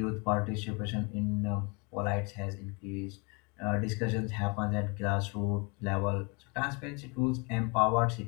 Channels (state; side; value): quieter; right; 31.3 dB